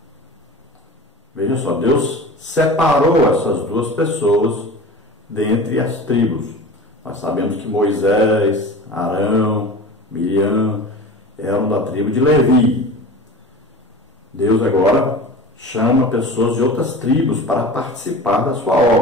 Veja só, Deus separou essas 2 pessoas dentre as tribos. Nós sabemos que Moisés, Arão, Miriam eram da tribo de Levi. Deus agora chama pessoas de outras tribos para participar da sua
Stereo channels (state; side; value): normal; both; correlation 0.35